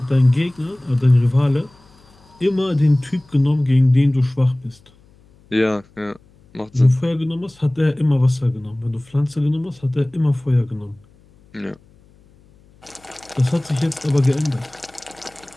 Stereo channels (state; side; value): noise; left; hum, 29 dB below the sound